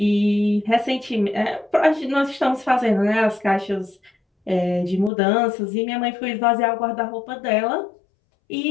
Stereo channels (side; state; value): right; drops out; at 5.1 s